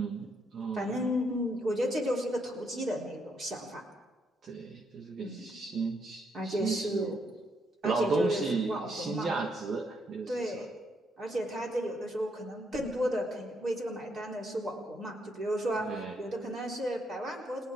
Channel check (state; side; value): normal; both; correlation 0.75